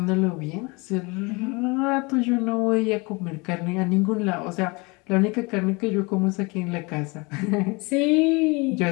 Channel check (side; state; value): right; quieter; 27.3 dB